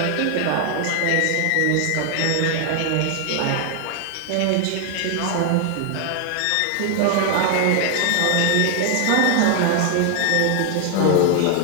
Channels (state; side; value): different; both; correlation 0.00